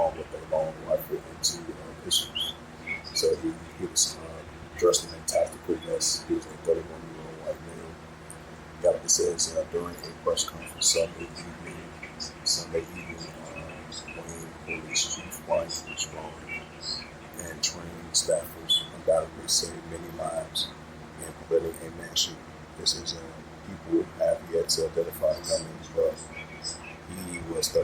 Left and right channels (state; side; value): identical; both; correlation 1.00